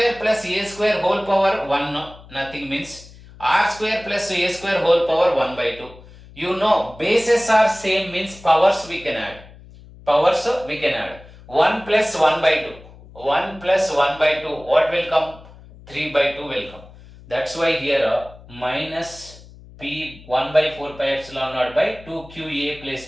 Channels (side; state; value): left; noise; hum, 21 dB below the sound